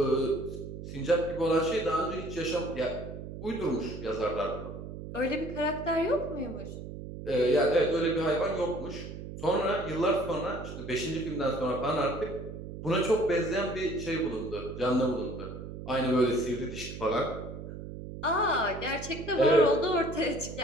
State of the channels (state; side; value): noise; right; hum, 10 dB below the sound